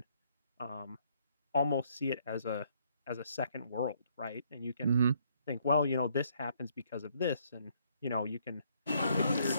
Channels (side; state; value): both; inverted; correlation -0.68